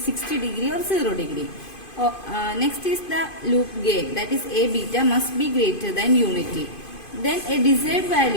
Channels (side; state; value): right; late; 2.5 ms